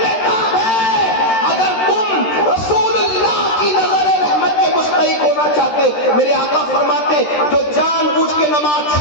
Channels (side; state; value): right; late; 13 ms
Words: ہے۔ اگر تم رسول اللہ کی نظر رحمت کے مستحق ہونا چاہتے، میرے آقا فرماتے جو جان بوجھ کے نماز